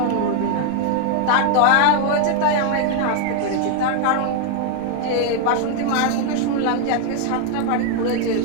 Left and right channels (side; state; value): both; different; correlation 0.00